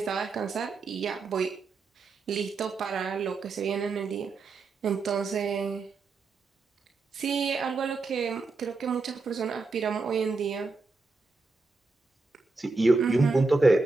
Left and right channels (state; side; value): quieter; left; 3.9 dB